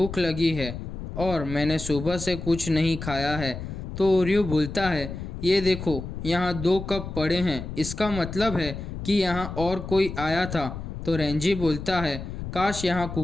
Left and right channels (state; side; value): noise; left; rumble, 8 dB below the sound